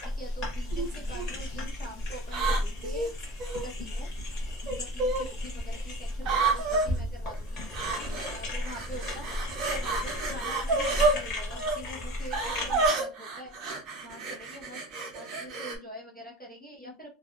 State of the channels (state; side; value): normal; both; correlation 0.37